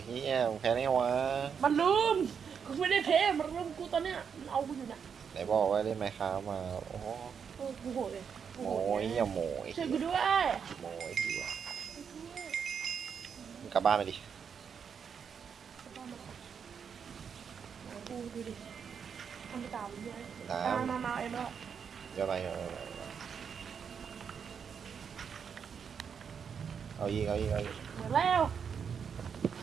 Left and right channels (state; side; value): quieter; left; 6.9 dB